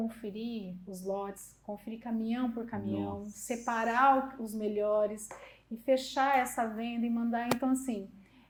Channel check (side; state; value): both; identical; correlation 1.00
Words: os lotes, conferir caminhão por caminhão, separar os melhores e fechar essa venda e mandar. Então assim,